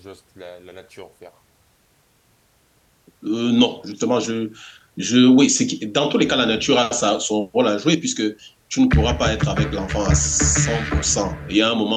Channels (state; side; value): identical; both; correlation 1.00